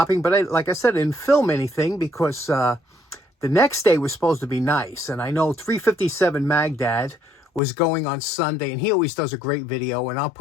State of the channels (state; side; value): drops out; right; at 7.6 s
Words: but like I said, I didn't film anything because the next day was supposed to be nice. And I know 357 Magdad was going on Sunday, and he always does a great video, and I'll